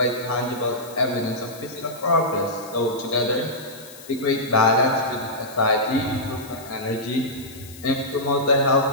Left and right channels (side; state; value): left; noise; hiss, 18 dB below the sound